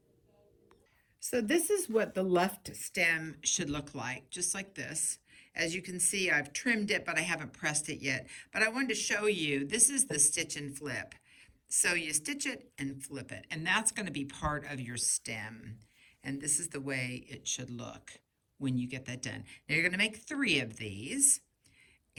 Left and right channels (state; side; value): identical; both; correlation 1.00